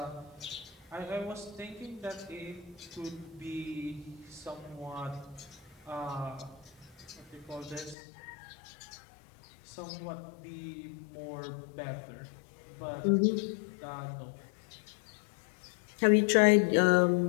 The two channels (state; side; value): drops out; right; at 8.0 s